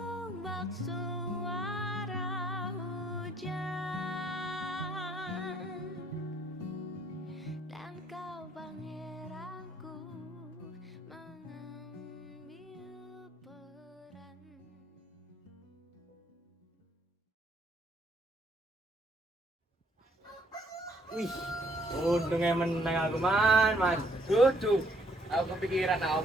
bak suara hujan, dan kau pangeranku mengambil peran. Wih, untungnya menang aku man. Dudu, aku kepikiran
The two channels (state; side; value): normal; both; correlation 0.67